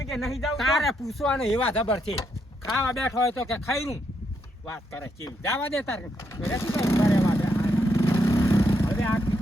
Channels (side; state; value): both; normal; correlation 0.78